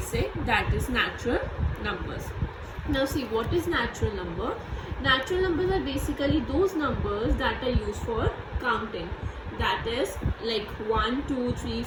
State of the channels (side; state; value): both; identical; correlation 1.00